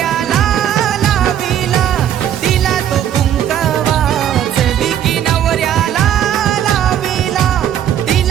लाविला दिला तो कुंकवाच विकी नवऱ्याला लाविला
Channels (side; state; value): left; quieter; 10.4 dB